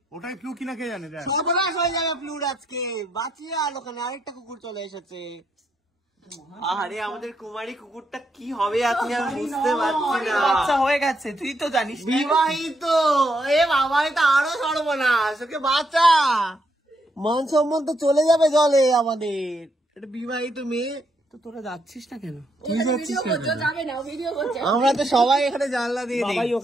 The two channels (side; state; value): both; normal; correlation 0.77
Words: ওটাই প্লু কিনা কে জানে। সর্বনাশ হয়ে যাবে প্লুর আজকে। বাঁচিয়ে আর ওখানে আরেকটা কুকুর চলে এসেছে। আরে আমাদের কুমারী কুকুরটা কি হবে আজকে আমি বুঝতে পারছি না। বাচ্চা হয়ে গেছে, তুই তো জানিস। বিবাহিত, এ বাবা এটা আরো সর্বনাশ। ওকে বাচ্চা, মান সম্মান তো চলে যাবে জলে আমাদের। এটা বিবাহিত মেয়ে। তো তোরা যাচ্ছিস না কেন? আমরা তো সবাই এখানে জানলা দিয়ে দিই। বাবাই